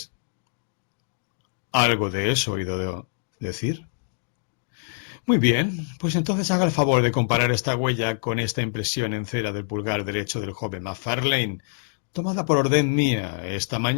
Algo de eso he oído decir. Muy bien, pues entonces haga el favor de comparar esta huella con esta impresión en cera del pulgar derecho del joven Macfarlane, tomada por orden mía esta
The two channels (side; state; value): right; silent; digital silence